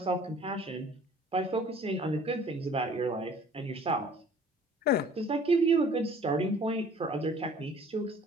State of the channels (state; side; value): normal; both; correlation 0.52